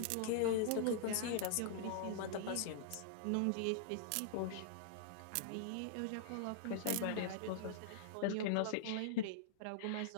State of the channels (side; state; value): both; different; correlation -0.02